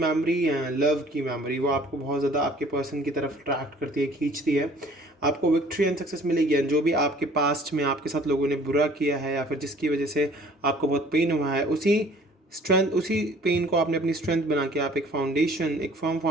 है, लव की मेमोरी, वो आपको बहुत ज़्यादा आपके पर्सन की तरफ अट्रैक्ट करती है, खींचती है। आपको विक्ट्री एंड सक्सेस मिलेगी, एंड जो भी आपके पास्ट में आपके साथ लोगों ने बुरा किया है या फिर जिसकी वजह से आपको बहुत पेन हुआ है, उसी स्ट्रेंथ, उसी पेन को आपने अपनी स्ट्रेंथ बना के आप एक फाउंडेशन, एक फर्म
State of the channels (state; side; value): normal; both; correlation 0.53